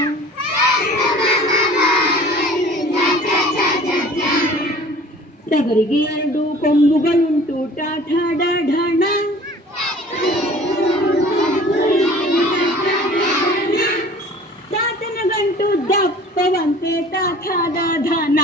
ಟಗರಿಗೆ 2 ಕೊಂಬುಗಳುಂಟು ಟಾಠ ಢಣ, ತಾತನ ಗಂಟು ದಪ್ಪವಂತೆ ತಾಥಾದ ಧನ,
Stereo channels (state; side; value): normal; both; correlation 0.47